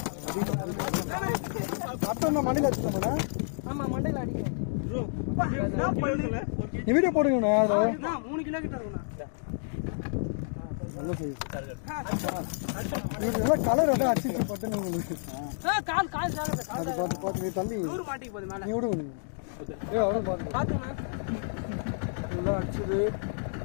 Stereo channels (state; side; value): silent; right; digital silence